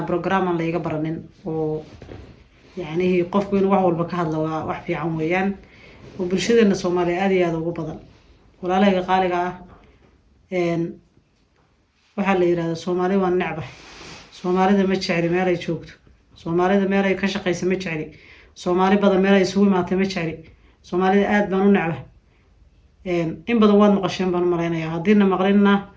اللي يقبرنين يعني هي قف بين وعول بكهذا وحفي عمويان وبرشدنا الصومالي هذا وقبضا ولا قالك إن وحلا يراد الصومالي والنعبة الصومالي ده متشعري ما لا يشوكت الصومالي ده ما لا يكشق يسمى متشعري الصومالي بدل ما لا يسوي ما تمتشعري الصومالي آد بانو نعبة إن بدو واد مقشين بانو مرينا يا هدينا مغرينا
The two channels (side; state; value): both; identical; correlation 1.00